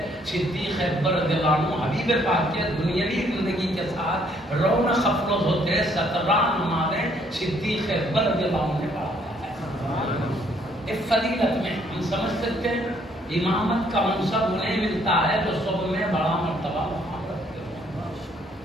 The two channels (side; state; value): both; normal; correlation 0.66